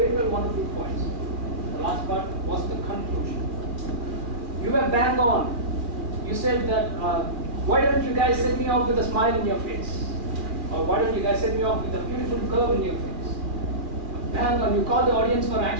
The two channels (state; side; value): late; left; 2.2 ms